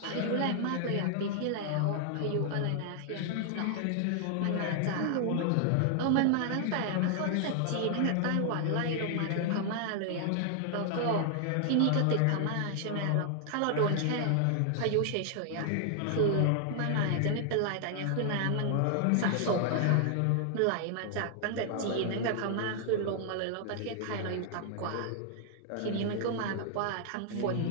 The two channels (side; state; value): both; different; correlation 0.00